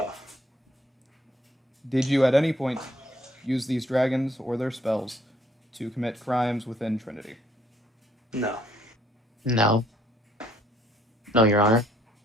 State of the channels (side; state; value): both; normal; correlation 0.65